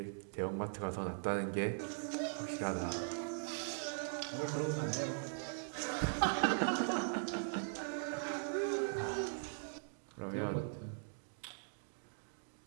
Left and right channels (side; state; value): left; silent; digital silence